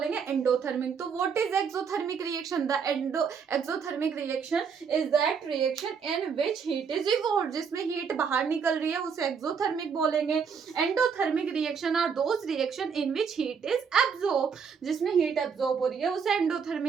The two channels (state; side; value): quieter; left; 6.3 dB